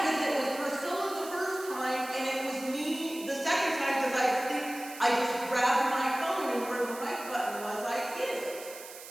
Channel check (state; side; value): noise; right; hiss, 14 dB below the sound